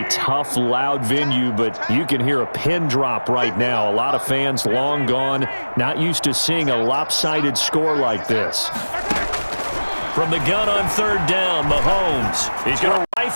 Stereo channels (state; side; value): inverted; both; correlation -1.00